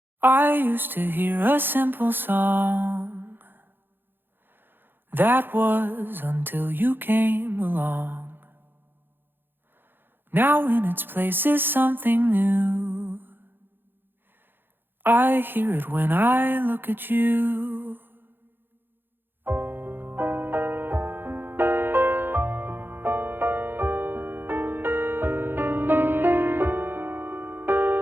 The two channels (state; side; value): late; left; 0.099 ms